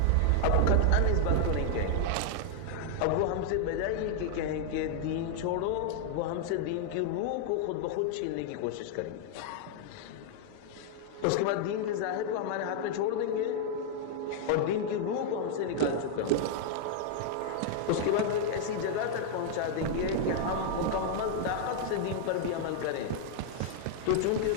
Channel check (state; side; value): different; both; correlation -0.01